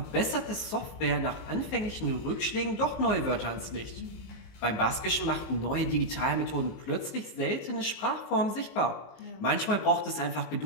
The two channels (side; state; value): right; late; 19 ms